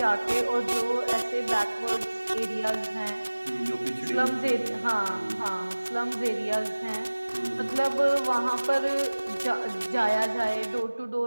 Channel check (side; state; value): both; inverted; correlation -1.00